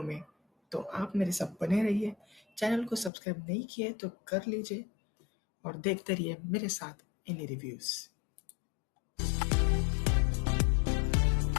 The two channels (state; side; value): drops out; right; at 3.1 s